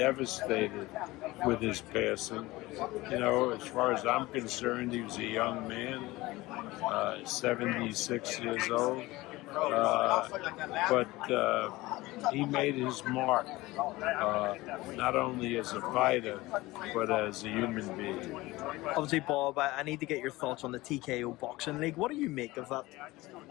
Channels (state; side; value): quieter; right; 19.8 dB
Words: with his passing. As far as I'm concerned, he was a young man, 76 years old. But he made his mark, not only as a fighter, but as a human being. Obviously, Bob, I need to get your thoughts on the TKO Boxing League. What do you make of that?